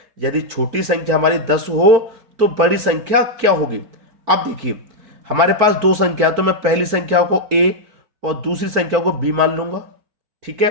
यदि छोटी संख्या हमारी 10 हो तो बड़ी संख्या क्या होगी। अब देखिए हमारे पास 2 संख्या, तो मैं पहली संख्या को a और दूसरी संख्या को b मान लूंगा, ठीक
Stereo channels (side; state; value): left; late; 4.5 ms